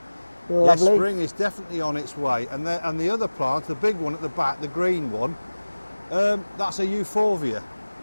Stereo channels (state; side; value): inverted; both; correlation -1.00